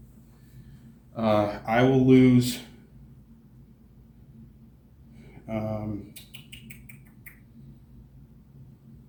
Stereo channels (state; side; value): identical; both; correlation 1.00